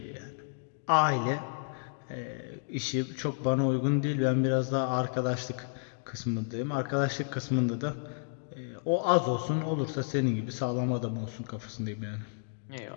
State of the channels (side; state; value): right; silent; digital silence